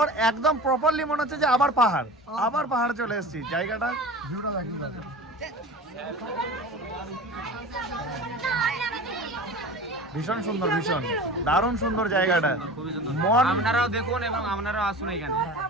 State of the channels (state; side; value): normal; both; correlation 0.36